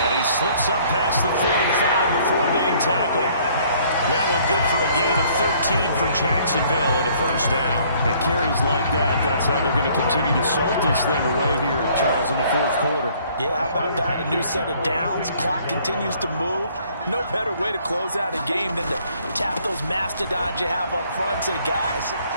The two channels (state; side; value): inverted; both; correlation -0.60